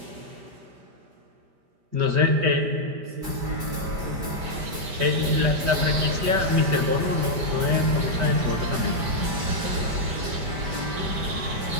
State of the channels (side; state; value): left; late; 5.1 ms